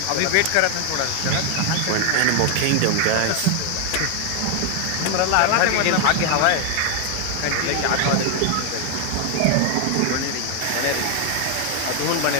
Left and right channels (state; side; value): different; both; correlation 0.00